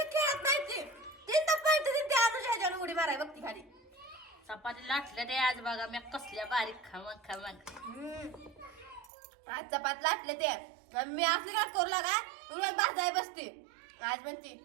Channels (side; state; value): left; drops out; at 9.1 s